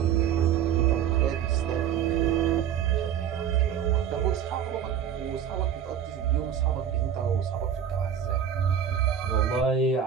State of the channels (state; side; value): quieter; left; 8.8 dB